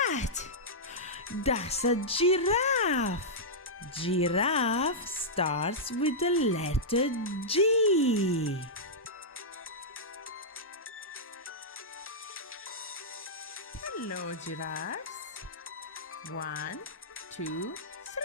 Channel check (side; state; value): both; normal; correlation -0.10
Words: That's a giraffe. Giraffe starts with the letter G. Hello, giraffes. 1, 2,